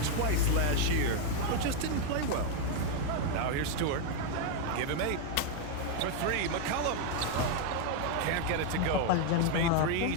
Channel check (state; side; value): different; both; correlation 0.01